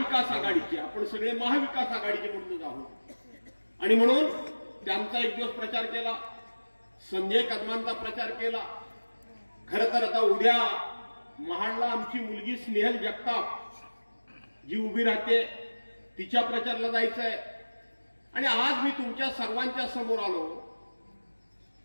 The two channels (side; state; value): both; inverted; correlation -1.00